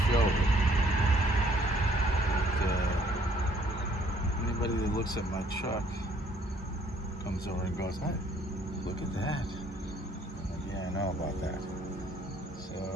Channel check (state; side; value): normal; both; correlation 0.63